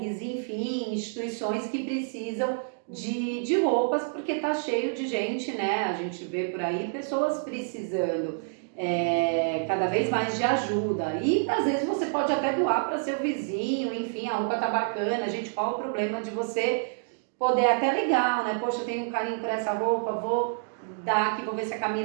enfim, instituições que precisam de roupas, porque está cheio de gente, né? A gente vê por aí pessoas precisando cada vez mais de ajuda. E às vezes você pode até doar para seu vizinho, enfim, a roupa tá bacana, gente, qual o problema de você poder até legal, né? Poxa, eu tenho um carinho por essa roupa, vou dar aqui, vou ver se a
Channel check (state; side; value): silent; left; digital silence